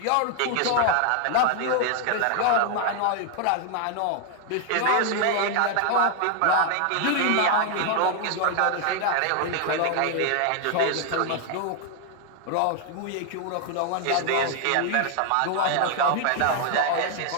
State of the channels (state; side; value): different; both; correlation 0.00